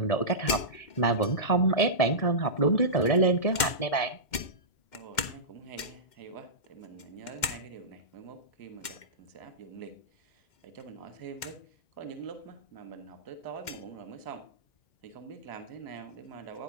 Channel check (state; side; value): late; right; 2.1 ms